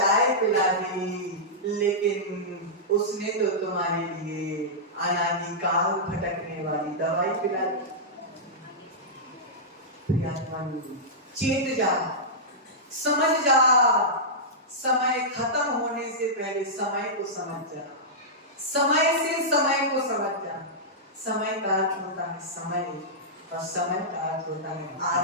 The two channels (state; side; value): normal; both; correlation -0.12